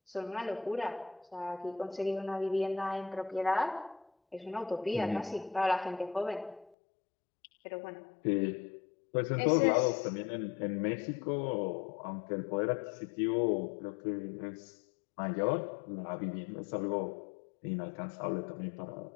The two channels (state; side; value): drops out; right; at 6.7 s